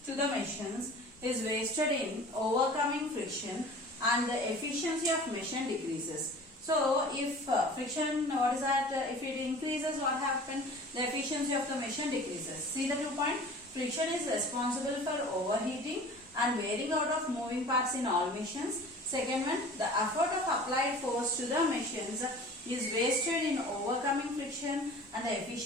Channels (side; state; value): both; normal; correlation 0.43